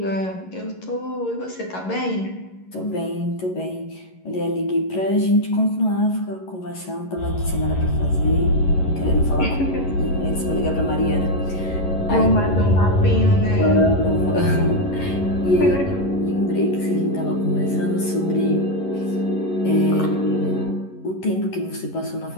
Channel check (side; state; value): right; late; 11 ms